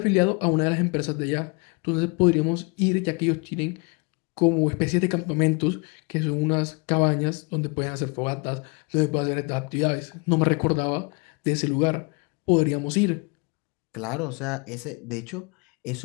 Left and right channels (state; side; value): quieter; right; 31.9 dB